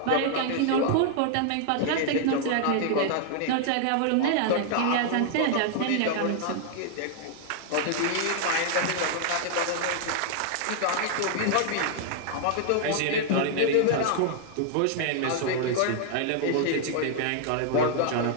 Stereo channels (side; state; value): both; different; correlation 0.00